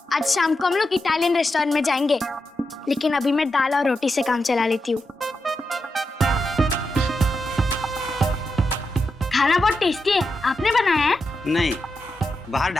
आज शाम को हम लोग इटालियन रेस्टोरेंट में जाएंगे, लेकिन अभी मैं दाल और रोटी से काम चला लेती हूँ। खाना बहुत टेस्टी है, आपने बनाया है? नहीं, बाहर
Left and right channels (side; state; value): both; normal; correlation 0.87